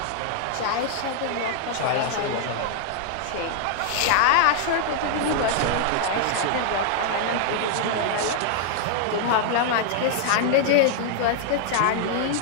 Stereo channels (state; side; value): different; both; correlation 0.00